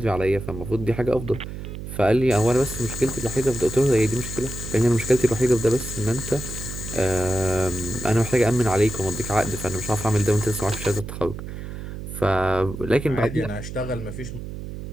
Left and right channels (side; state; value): right; noise; hum, 9 dB below the sound